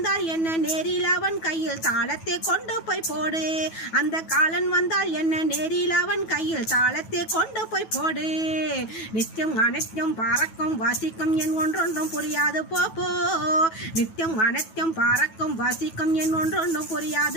என்ன நேரில் அவன் கையில் தாளத்தை கொண்டு போய் போடு. அந்த காலன் வந்தால் என்ன நேரில் அவன் கையில் தாளத்தை கொண்டு போய் போடு. நித்தியம் அனைத்தும் பறக்கும் வாசிக்கும் என் ஒன்றொன்றும் புரியாது போப்போ. நித்தியம் அனைத்தும் பறக்கும் வாசிக்கும் என் ஒன்றொன்றும்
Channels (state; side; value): late; right; 9.2 ms